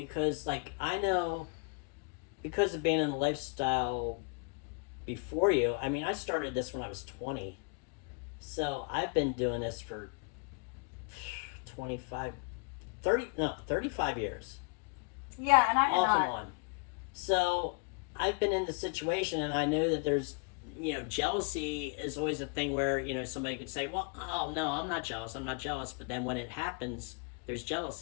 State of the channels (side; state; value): right; quieter; 33.7 dB